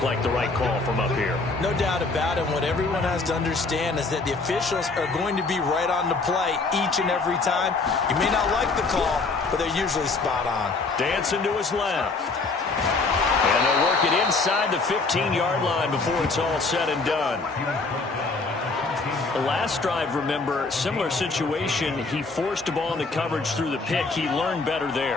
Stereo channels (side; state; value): right; quieter; 3.8 dB